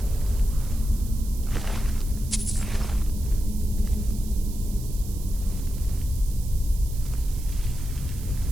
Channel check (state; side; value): noise; right; hiss, 16 dB below the sound